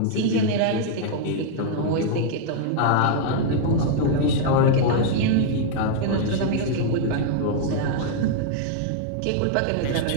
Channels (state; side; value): different; both; correlation -0.01